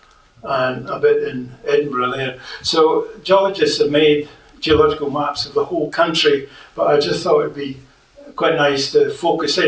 and a bit in Edinburgh there. So geologists have made geological maps of the whole country, but I just thought it'd be quite nice to focus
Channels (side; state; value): both; identical; correlation 1.00